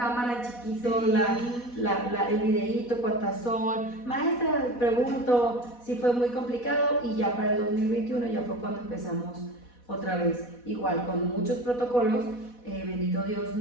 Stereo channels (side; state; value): right; late; 4.1 ms